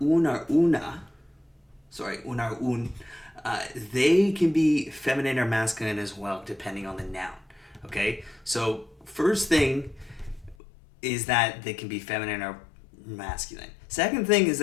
un or un, they can be feminine or masculine as well, depending on the noun. Okay, so first thing is that they can be feminine or masculine. Second thing is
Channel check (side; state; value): right; drops out; at 10.6 s